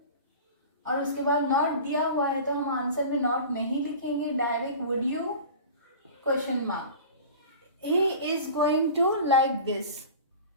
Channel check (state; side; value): inverted; both; correlation -0.37